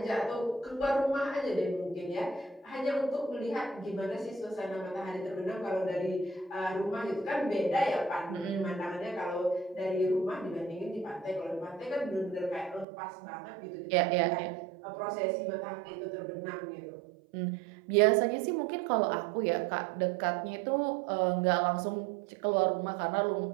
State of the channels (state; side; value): drops out; left; at 12.9 s